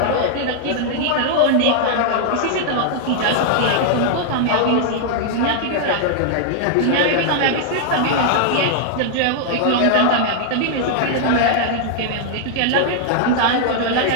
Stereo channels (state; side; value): different; both; correlation -0.01